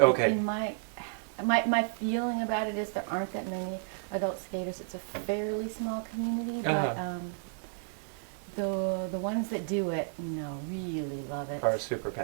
Okay. In my feeling about it is there aren't that many adult skaters. It's a fairly small community, but the ones that do it, really love it. Are super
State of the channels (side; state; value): left; silent; 56 dB below the other